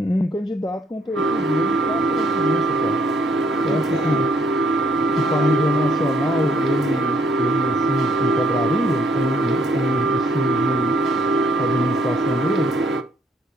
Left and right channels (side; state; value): both; normal; correlation 0.67